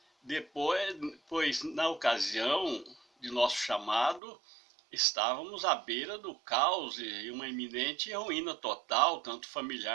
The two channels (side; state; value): left; drops out; at 4.2 s